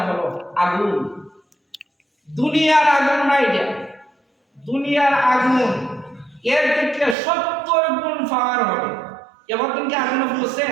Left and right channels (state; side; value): drops out; left; at 7.2 s